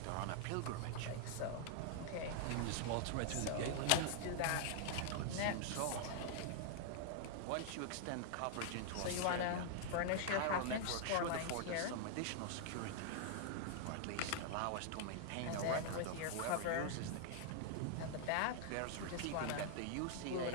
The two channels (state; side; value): different; both; correlation 0.00